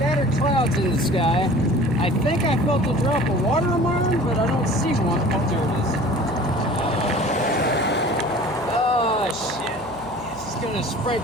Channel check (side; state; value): right; noise; hum, 20 dB below the sound